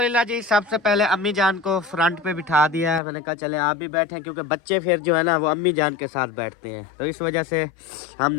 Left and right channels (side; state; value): right; drops out; at 3.0 s